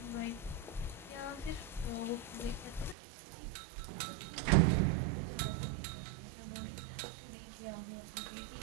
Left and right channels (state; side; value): drops out; left; at 3.0 s